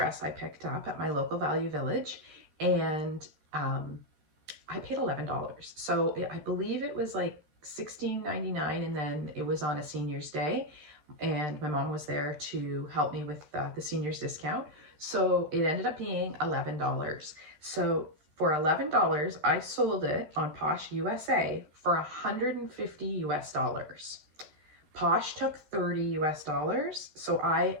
I picked up at my local Value Village, and I paid $11. So I believe it was like $16.99, and then it was on a senior's day, and my mom was there to help me with the senior's discount. So it ended up being $11. So for $11, I sold it on Posh USA for $150 US. Posh took 30 US dollars. So I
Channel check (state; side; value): late; left; 13 ms